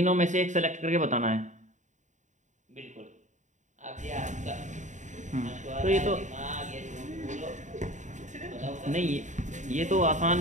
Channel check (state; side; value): late; left; 0.35 ms